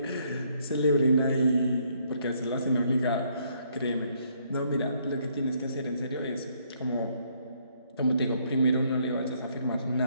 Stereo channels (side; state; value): both; inverted; correlation -0.69